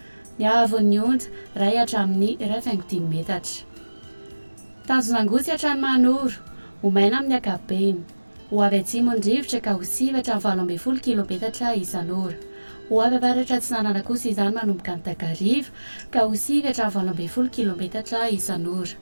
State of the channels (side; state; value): both; inverted; correlation -1.00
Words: ny hahavon'ny onja 1 hatramin'ny 1.5 metatra. Tanjona angotsy hatrany Manoro, omaina amin'ny ankapobeny. Ho avy atsimo ny rivotra ka ho sivy hatramin'ny 20 kilometatra isan'ora. Ho avy avaratra atsinanana kosa izany manomboka ny Takariva ka ho sivy hatramin'ny 20 kilometatra isan'ora.